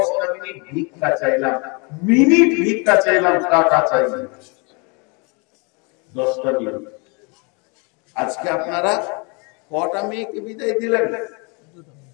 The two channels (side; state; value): right; quieter; 31.7 dB